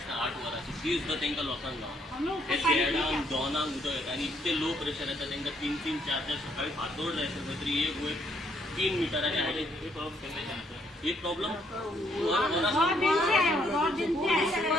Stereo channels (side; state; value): both; normal; correlation 0.70